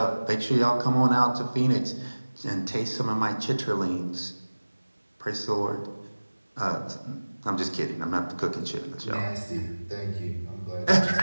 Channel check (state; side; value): inverted; both; correlation -1.00